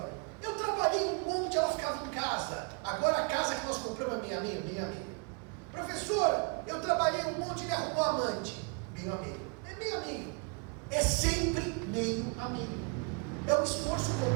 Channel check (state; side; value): quieter; left; 34.7 dB